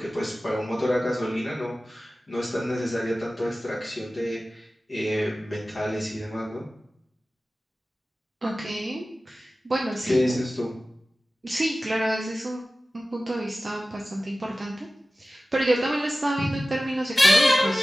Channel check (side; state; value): both; normal; correlation 0.96